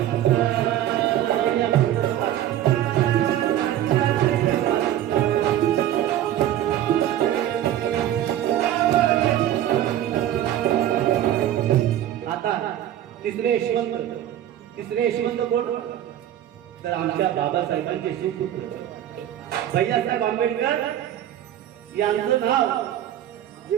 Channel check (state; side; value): quieter; left; 11.9 dB